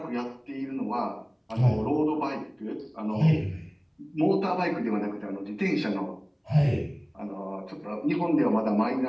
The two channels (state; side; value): identical; both; correlation 1.00